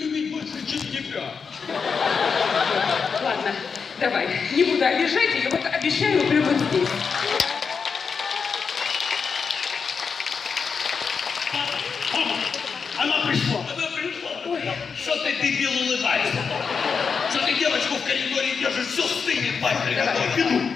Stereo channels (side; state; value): right; quieter; 5.7 dB